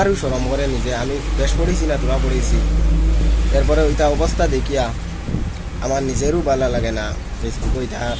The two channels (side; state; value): both; identical; correlation 1.00